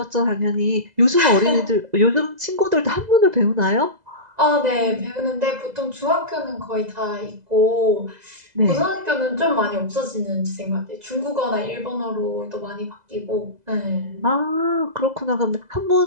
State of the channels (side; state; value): left; late; 2.0 ms